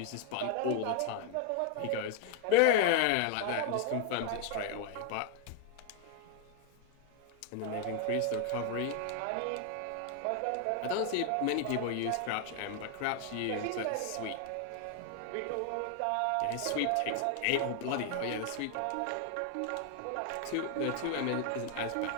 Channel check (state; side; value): different; both; correlation 0.01